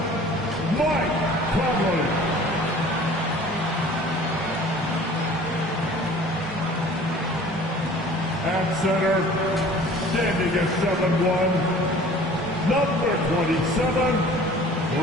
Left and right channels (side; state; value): both; normal; correlation 0.47